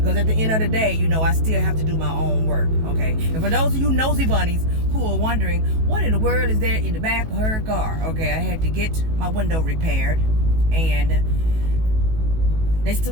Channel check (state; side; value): late; left; 18 ms